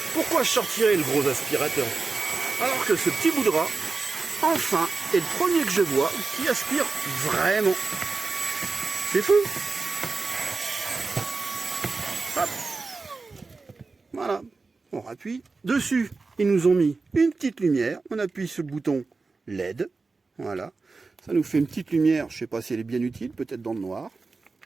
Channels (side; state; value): left; quieter; 4.0 dB